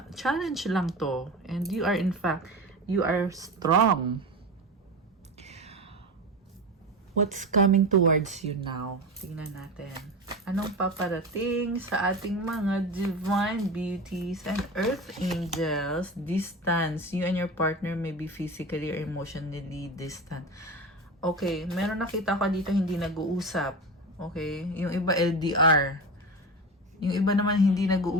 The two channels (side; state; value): both; normal; correlation 0.26